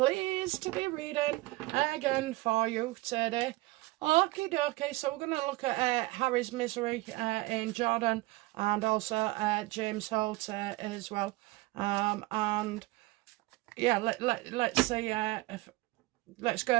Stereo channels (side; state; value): left; quieter; 20.5 dB